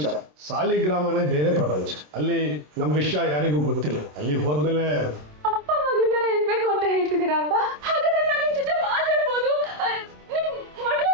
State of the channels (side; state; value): left; late; 27 ms